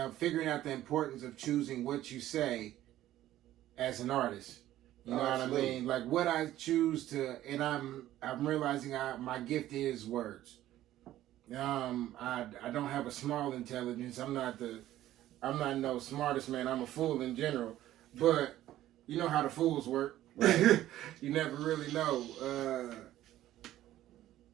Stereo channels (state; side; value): quieter; left; 13.8 dB